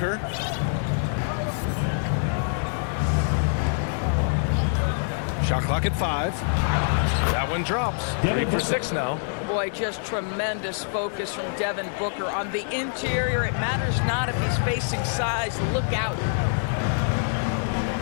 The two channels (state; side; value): silent; right; digital silence